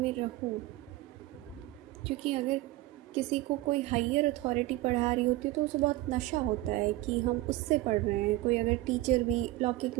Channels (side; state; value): left; quieter; 17.6 dB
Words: रहो। क्योंकि अगर किसी को कोई हायर अथॉरिटी पढ़ा रही होती है तो उसे बहुत नशा होता है कि हम उससे पढ़ रहे हैं। कोई अगर टीचर भी लौकिक